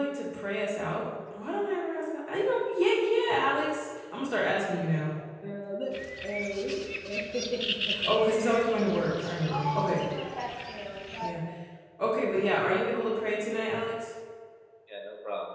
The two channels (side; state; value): both; identical; correlation 1.00